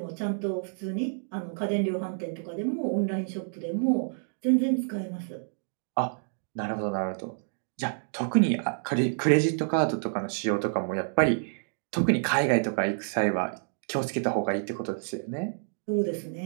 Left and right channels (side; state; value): left; silent; digital silence